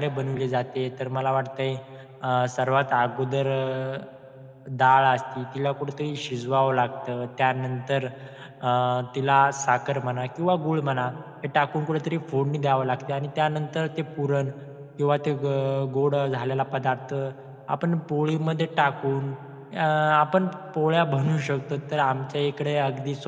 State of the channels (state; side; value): identical; both; correlation 1.00